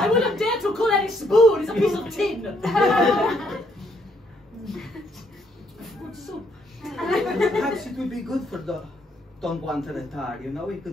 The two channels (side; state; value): both; normal; correlation 0.70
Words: wouldn't dare to call it a spoon. It's a piece of tin. Good soup. Perhaps it would be good for Don Juan to retire. You know, he